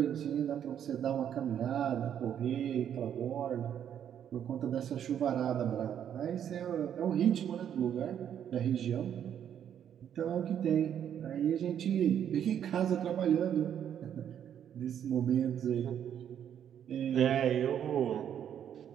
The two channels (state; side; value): quieter; left; 9.3 dB